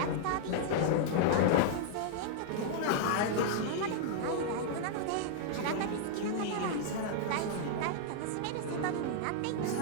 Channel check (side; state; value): both; different; correlation -0.01